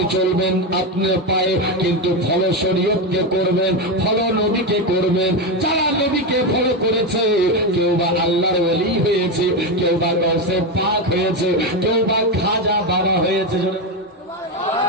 চলবেন আপনার পায়ে, কিন্তু ফলো শরীয়তকে করবেন, ফলো নবীকে করবেন। যারা নবীকে ফলো করেছে, কেউ বা আল্লাহর ওলি হয়েছে, কেউ বা গৌসে পাক হয়েছে, কেউ বা খাজা বাবা হয়েছে।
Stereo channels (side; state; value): both; normal; correlation 0.12